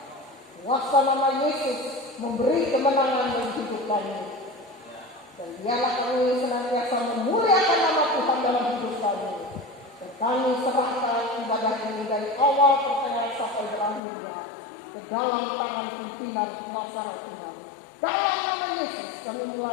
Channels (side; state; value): right; drops out; at 14.0 s